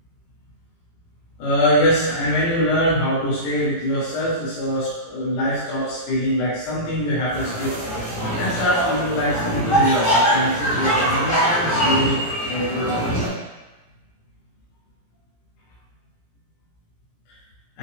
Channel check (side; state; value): right; late; 18 ms